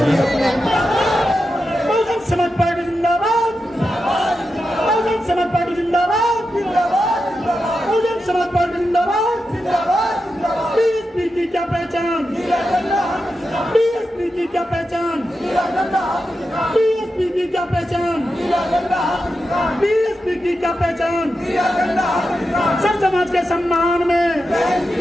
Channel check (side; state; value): both; normal; correlation 0.89